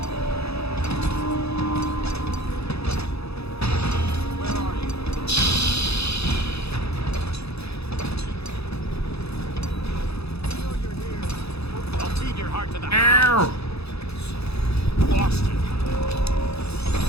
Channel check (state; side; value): late; right; 0.79 ms